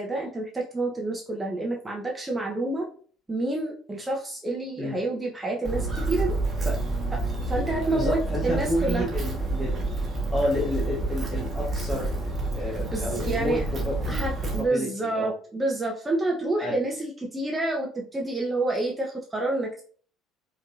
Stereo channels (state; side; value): normal; both; correlation 0.73